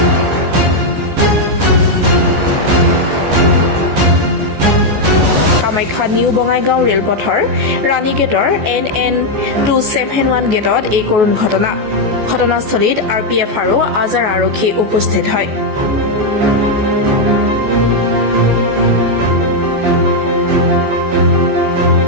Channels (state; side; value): late; left; 14 ms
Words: কামাখ্যা নিউ বঙাইগাঁও ৰেলপথৰ ৰাণী গেটৰ NN 271 গেটত এই কৰুণ ঘটনা ঘটনাস্থলীত RPF আৰু আজাৰ আৰক্ষী উপস্থিত হয়